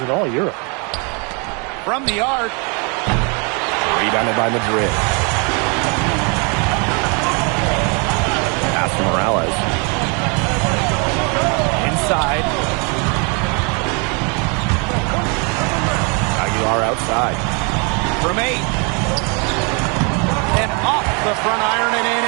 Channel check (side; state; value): left; quieter; 34.1 dB